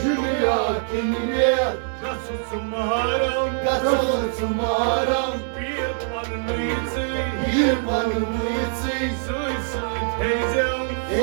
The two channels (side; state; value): left; silent; digital silence